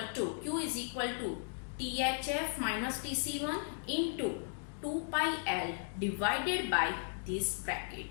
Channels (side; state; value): right; silent; digital silence